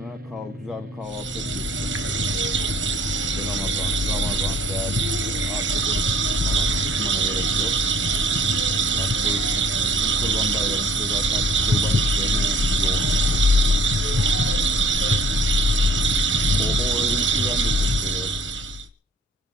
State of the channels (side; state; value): both; normal; correlation 0.54